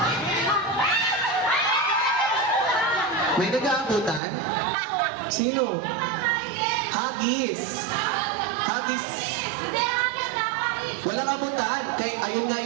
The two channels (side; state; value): left; drops out; at 4.2 s